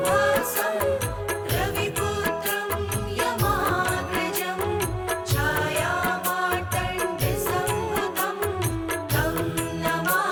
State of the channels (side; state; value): both; identical; correlation 1.00